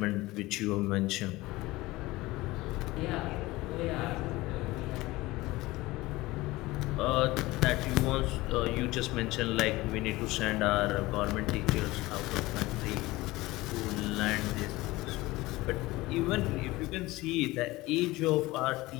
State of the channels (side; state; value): right; quieter; 19.7 dB